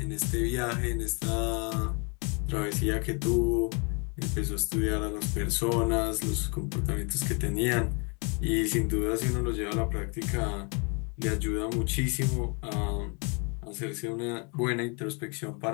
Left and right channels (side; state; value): right; quieter; 33.7 dB